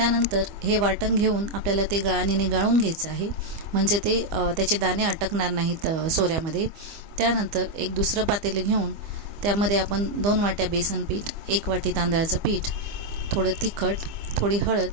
हे वाटण घेऊन आपल्याला ते गाळणीने गाळून घ्यायचं आहे, म्हणजे ते त्याचे दाणे अटकणार नाहीत सोऱ्यामध्ये। त्यानंतर एक दुसरं पातेले घेऊन त्यामध्ये आपण 2 वाट्या बेसन पीठ, 1 वाटी तांदळाचं पीठ, थोडं तिखट, थोडी हळद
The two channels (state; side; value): late; left; 25 ms